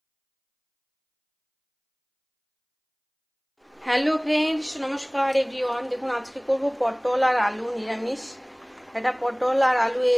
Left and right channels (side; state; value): both; identical; correlation 1.00